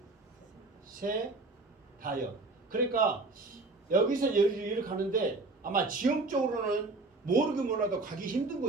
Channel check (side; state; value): left; quieter; 3.4 dB